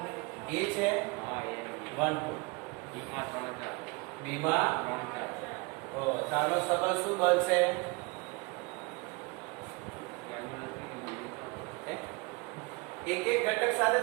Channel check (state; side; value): quieter; left; 27.2 dB